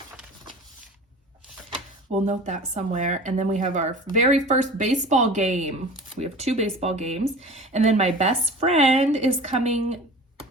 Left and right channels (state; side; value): normal; both; correlation 0.39